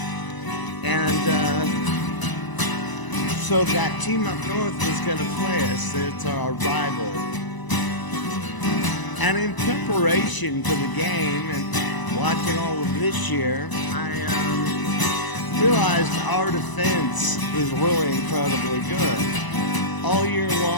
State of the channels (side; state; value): right; late; 1.0 ms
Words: And, so that team up north was going to play us. It's our rival. And in preparation for the game and watching all of this year, I realized our defense is really incredibly good. All year